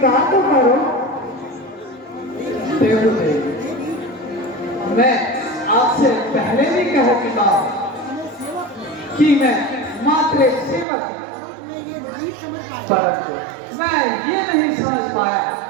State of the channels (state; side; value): drops out; left; at 10.9 s